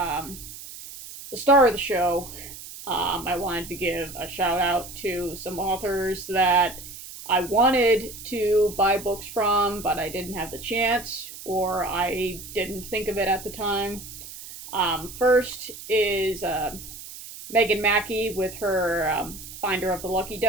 the star of the show, I wanted to give a shout out to some authors that I wanted to buy books from, but I didn't have the chance, or I didn't think of it at the time. First is Megan Mackie with her Finder of the Lucky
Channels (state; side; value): noise; right; hiss, 13 dB below the sound